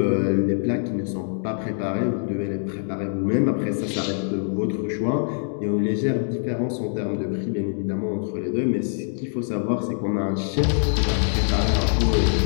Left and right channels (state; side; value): silent; right; digital silence